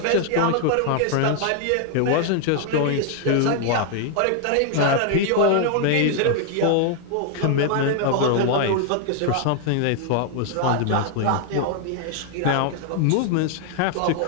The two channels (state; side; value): different; both; correlation 0.00